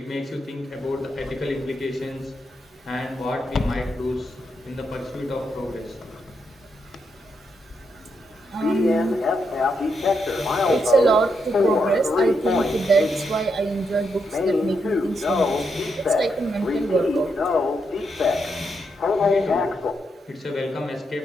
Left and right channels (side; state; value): both; normal; correlation 0.81